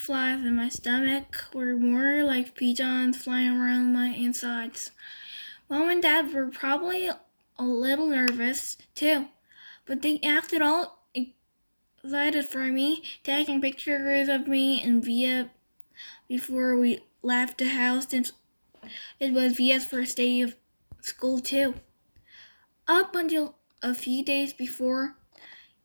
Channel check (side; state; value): both; inverted; correlation -1.00